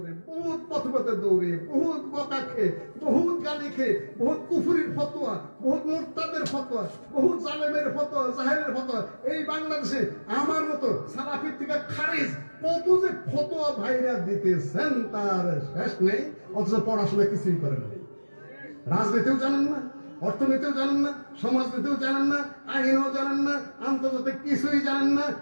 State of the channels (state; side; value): inverted; both; correlation -1.00